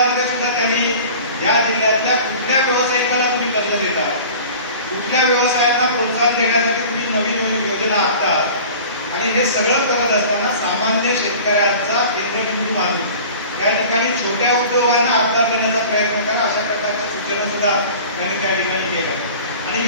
सुद्धा त्यांनी या जिल्ह्यातल्या कुठल्या व्यावसायिकाला तुम्ही कर्ज देता, कुठल्या व्यवसायांना प्रोत्साहन देण्यासाठी तुम्ही नवीन योजना आखता, आणि हे सगळं करत असताना सामान्य शेतकऱ्यांचा केंद्रबिंदू मानून त्या ठिकाणी छोट्या उद्योगांना आधार देण्याचा प्रयत्न करा, अशा प्रकारच्या सूचना सुद्धा त्यांनी त्या ठिकाणी केल्या. आणि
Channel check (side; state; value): both; inverted; correlation -0.41